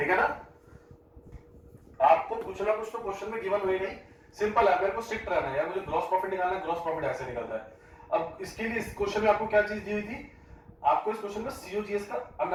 है ना। आपको कुछ ना कुछ तो क्वेश्चन में गिवन हुई नहीं, सिंपल है, मेरे को स्ट्रिक्ट रहना है यार, मुझे ग्रॉस प्रॉफिट निकालना है, ग्रॉस प्रॉफिट ऐसे निकलता है। अब इसके लिए इस क्वेश्चन में आपको क्या चीज दी हुई थी, आपको इस क्वेश्चन में सीओजीएस का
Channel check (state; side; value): identical; both; correlation 1.00